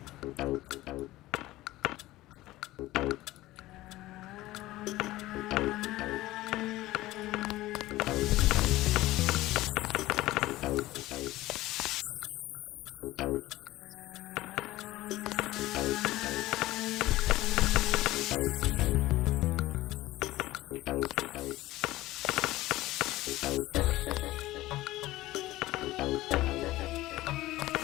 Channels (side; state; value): right; quieter; 17.2 dB